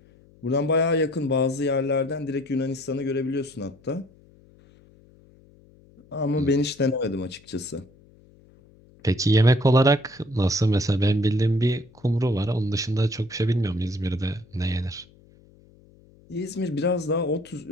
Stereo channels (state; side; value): noise; left; hum, 27 dB below the sound